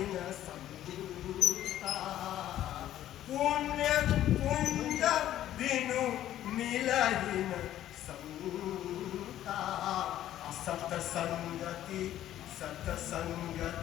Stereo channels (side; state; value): right; quieter; 12.5 dB